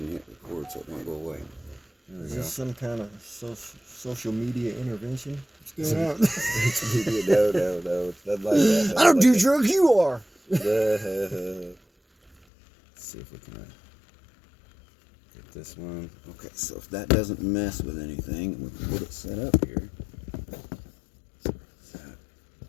and hit record so it won't go away. Is this some kind of social media intervention? What's going on? No. It's not like that. I don't do drugs. You are. Let's see if we can get this one. Okay, so if that doesn't mess with anything, we can get it set up here. Is that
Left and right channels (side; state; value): right; drops out; at 12.4 s